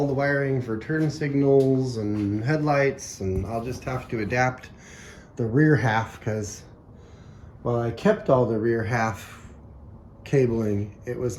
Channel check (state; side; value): identical; both; correlation 1.00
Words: the wiring for turn signals and headlights, and I'll just have to adapt the rear half, because while I kept all the rear half cabling, it was